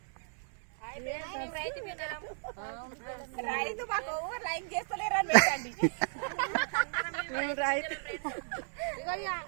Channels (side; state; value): left; silent; 55 dB below the other